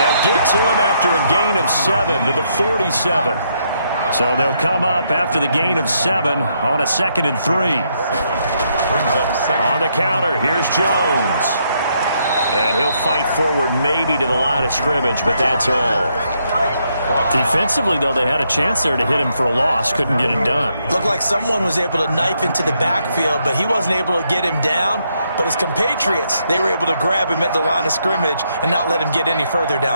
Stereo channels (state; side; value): inverted; both; correlation -0.76